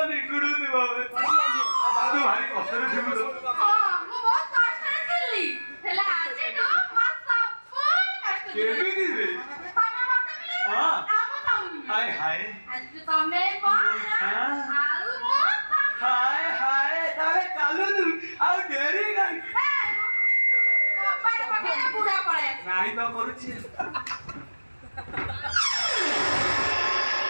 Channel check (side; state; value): both; inverted; correlation -1.00